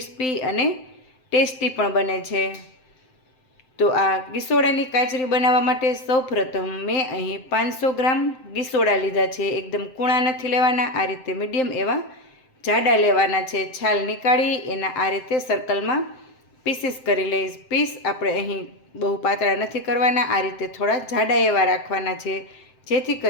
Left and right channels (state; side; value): late; right; 7.7 ms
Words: અને ટેસ્ટી પણ બને છે. તો આ ગીસોડાની કાચરી બનાવવા માટે સૌપ્રથમ મેં અહીં 500 ગ્રામ ગીસોડા લીધા છે. એકદમ કૂણા નથી લેવાના, આ રીતે મીડિયમ એવા જાડા લેવાના છે. છાલ નીકાળી એના આ રીતે સર્કલમાં પીસીસ કરી લઈશ. પીસ આપણે અહીં બહુ પાતળા નથી કરવાના, આ રીતે થોડા જાડા એવા રાખવાના છે, જેથી